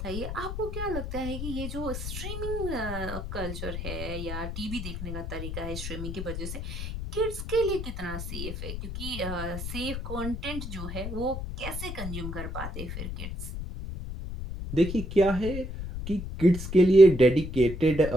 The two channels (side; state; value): left; noise; rumble, 6 dB below the sound